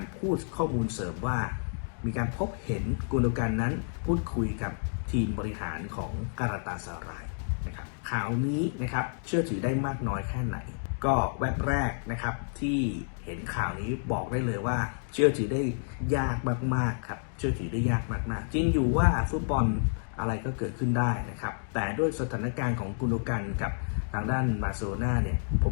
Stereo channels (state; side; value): silent; right; digital silence